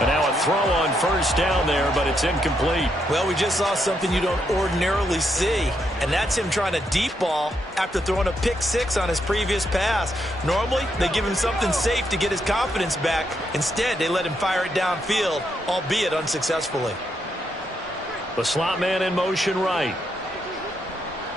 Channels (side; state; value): both; normal; correlation 0.79